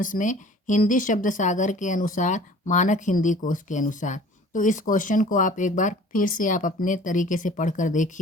में हिंदी शब्द सागर के अनुसार, मानक हिंदी कोश के अनुसार। तो इस क्वेश्चन को आप एक बार फिर से आप अपने तरीके से पढ़कर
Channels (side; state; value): both; normal; correlation 0.47